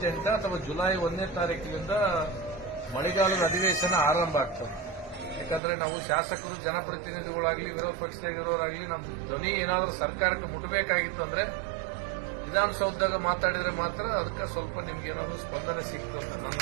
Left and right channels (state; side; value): drops out; left; at 5.6 s